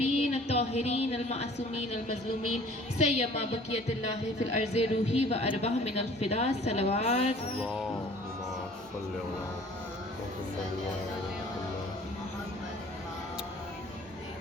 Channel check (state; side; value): normal; both; correlation 0.51